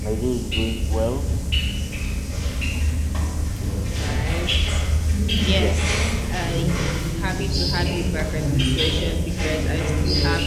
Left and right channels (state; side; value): identical; both; correlation 1.00